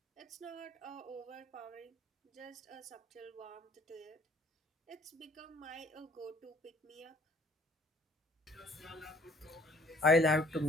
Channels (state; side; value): normal; both; correlation 0.58